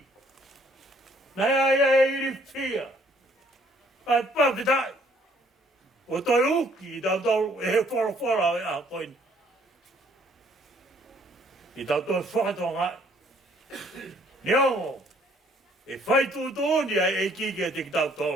Nā iai e iri whia. Ai papitai. O toi uki i tau e he whorofora e a koini. I tau toi whakatonga. Niongo. e Faitoka e kike te kitau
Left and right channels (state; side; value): normal; both; correlation 0.63